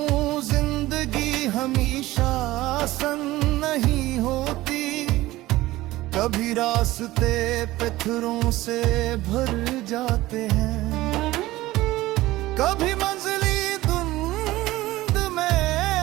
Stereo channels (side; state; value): left; quieter; 17.5 dB